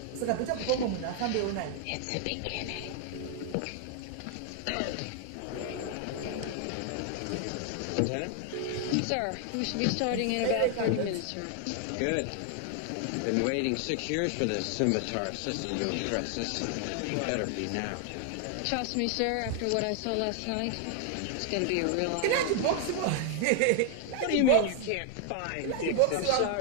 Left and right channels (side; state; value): both; different; correlation 0.00